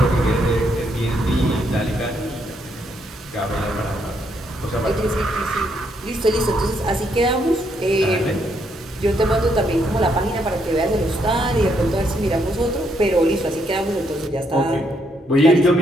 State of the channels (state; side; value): normal; both; correlation 0.75